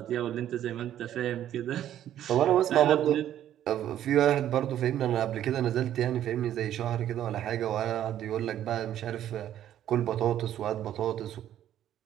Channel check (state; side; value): quieter; left; 11.4 dB